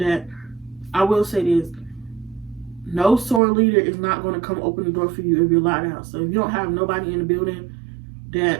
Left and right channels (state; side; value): drops out; left; at 3.4 s